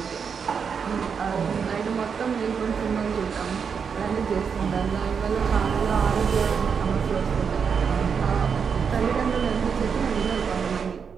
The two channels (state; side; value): quieter; left; 6.4 dB